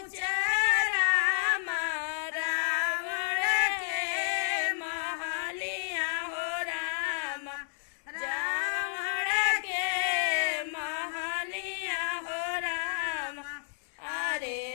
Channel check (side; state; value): right; silent; 57 dB below the other